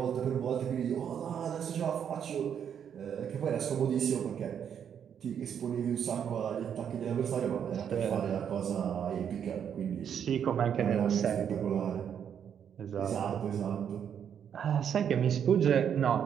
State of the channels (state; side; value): quieter; left; 8.3 dB